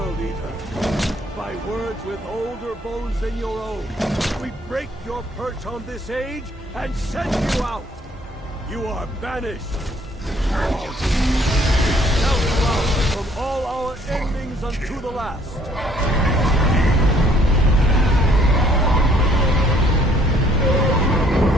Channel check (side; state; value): both; normal; correlation 0.62